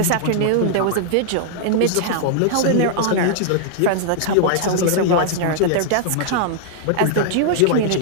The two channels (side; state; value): both; different; correlation -0.01